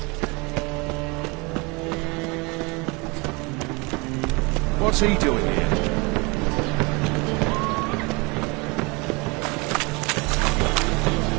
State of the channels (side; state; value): left; quieter; 27.8 dB